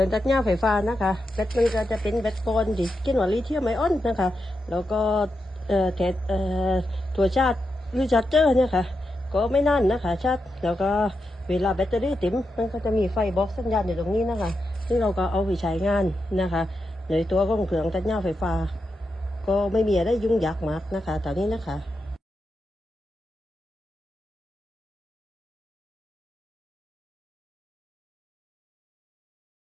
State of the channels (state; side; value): normal; both; correlation 0.87